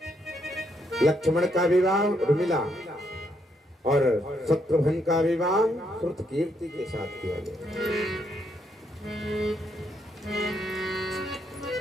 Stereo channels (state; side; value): normal; both; correlation 0.75